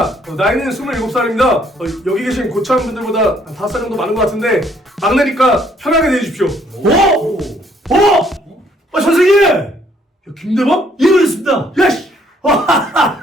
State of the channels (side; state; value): both; normal; correlation 0.65